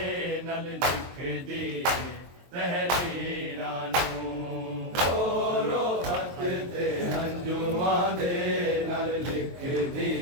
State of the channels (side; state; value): left; late; 23 ms